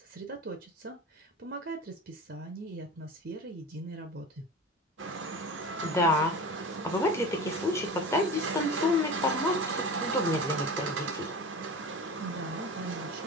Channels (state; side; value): normal; both; correlation 0.32